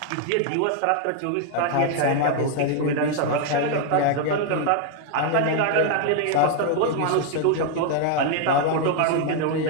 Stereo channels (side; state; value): both; different; correlation 0.00